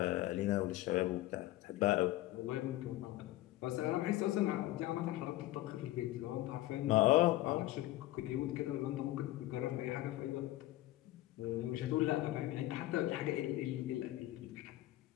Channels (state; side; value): quieter; right; 16.3 dB